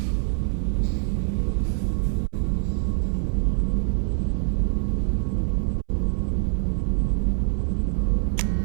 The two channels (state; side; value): silent; left; 62 dB below the other